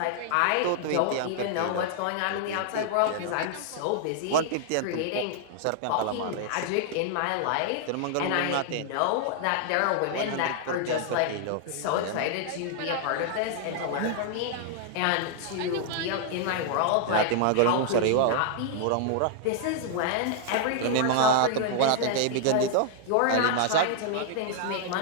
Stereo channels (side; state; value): both; different; correlation -0.01